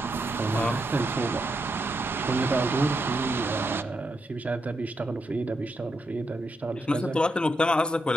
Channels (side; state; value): both; normal; correlation 0.83